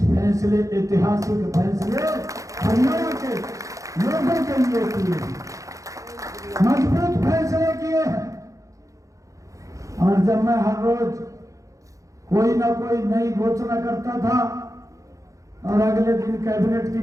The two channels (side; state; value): left; late; 0.16 ms